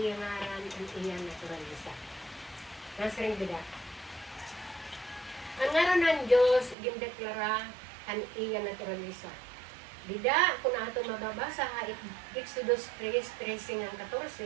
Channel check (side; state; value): left; drops out; at 6.8 s